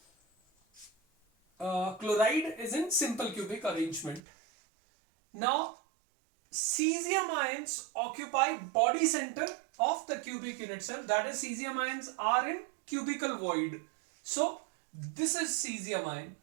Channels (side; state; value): left; drops out; at 4.2 s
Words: chloride is in simple cubic arrangement. Now cesium ions occupy body center of the cubic unit cell, that is cesium ions are in cubical void. So this is cesium ion.